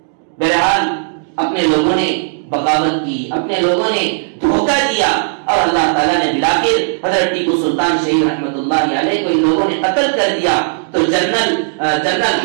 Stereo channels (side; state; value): left; silent; digital silence